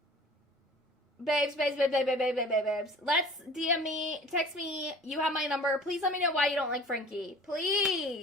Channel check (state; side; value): normal; both; correlation 0.45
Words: Babes. Let's DM me, text me. You have my number. Please let me know why you don't like Frankie.